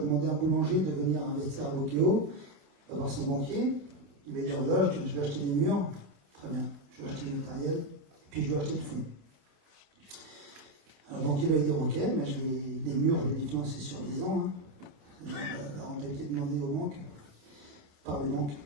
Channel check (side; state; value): left; late; 28 ms